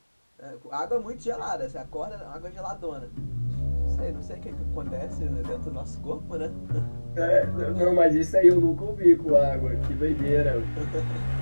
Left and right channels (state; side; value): inverted; both; correlation -1.00